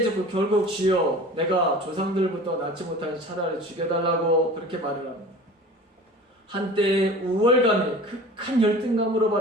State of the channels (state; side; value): normal; both; correlation 0.40